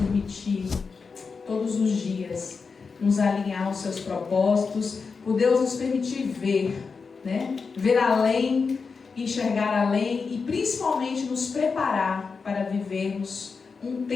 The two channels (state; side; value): quieter; right; 5.0 dB